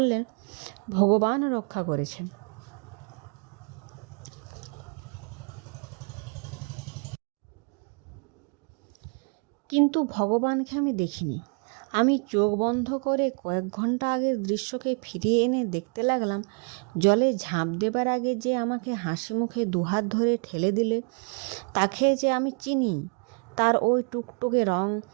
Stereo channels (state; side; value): quieter; left; 37.8 dB